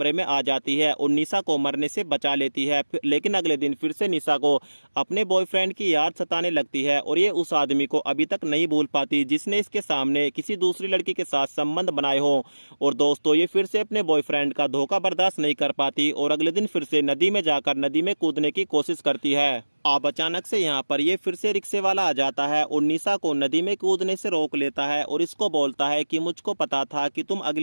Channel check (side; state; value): both; inverted; correlation -1.00